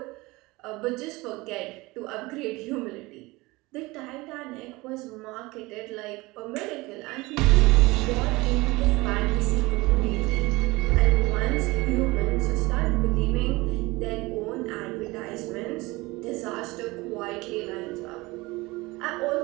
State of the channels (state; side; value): quieter; left; 22.0 dB